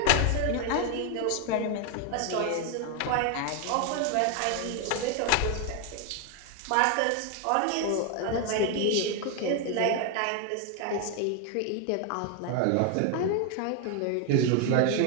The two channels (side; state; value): both; different; correlation 0.01